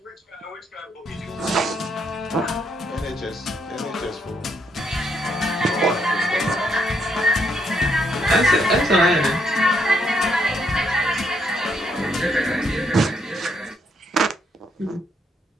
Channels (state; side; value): normal; both; correlation 0.74